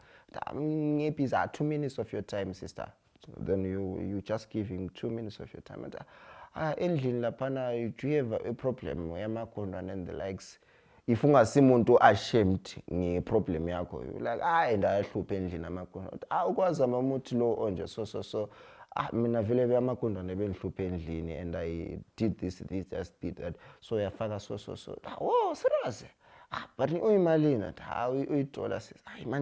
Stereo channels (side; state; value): both; identical; correlation 1.00